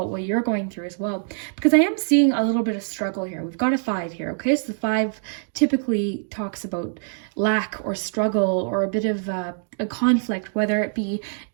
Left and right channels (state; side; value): silent; left; digital silence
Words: what you're going through as well, because I am seeing a little bit of struggle here. We've got a 5 here. Okay, so the 5 typically talks about lack or struggle or a bit of a conflict, whether it be